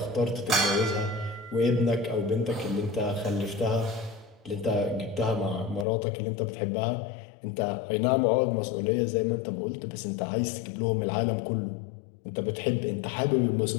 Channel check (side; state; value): right; drops out; at 5.9 s